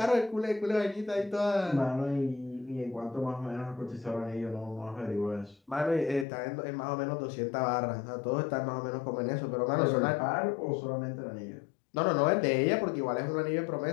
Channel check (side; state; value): right; drops out; at 6.2 s